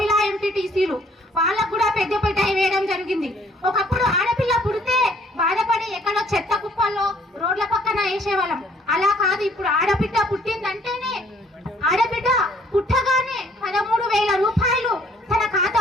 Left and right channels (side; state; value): both; normal; correlation 0.61